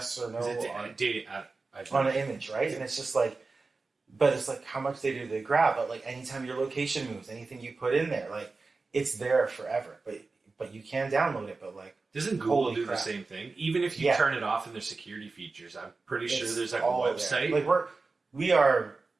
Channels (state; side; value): quieter; left; 3.9 dB